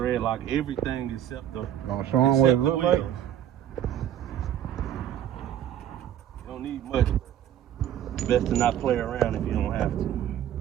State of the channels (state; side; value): quieter; left; 10.9 dB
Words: lock everything except the. Gonna show them what it looks like. You don't need much. Best to not play around if you don't have to.